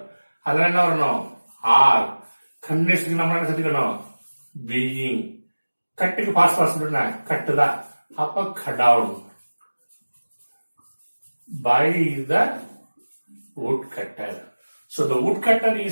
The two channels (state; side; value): inverted; both; correlation -1.00